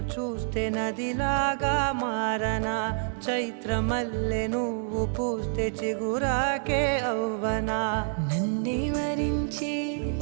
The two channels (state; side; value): silent; left; 60 dB below the other